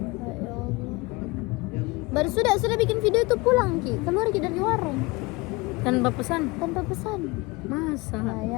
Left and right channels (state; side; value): quieter; right; 24.1 dB